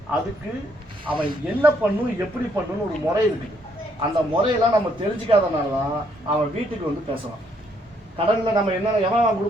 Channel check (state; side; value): normal; both; correlation 0.70